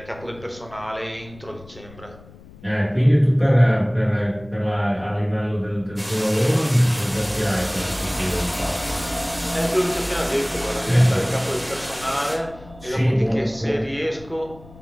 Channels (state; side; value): noise; left; rumble, 21 dB below the sound